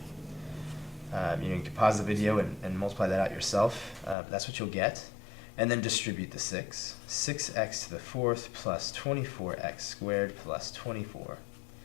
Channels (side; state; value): right; drops out; at 4.2 s